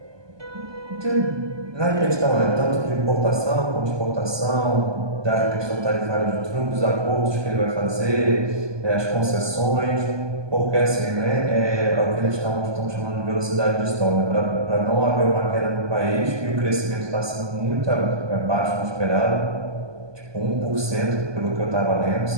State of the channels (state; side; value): late; left; 1.2 ms